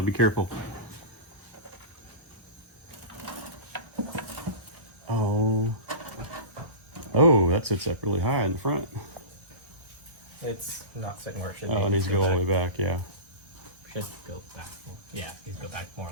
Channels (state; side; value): late; left; 1.3 ms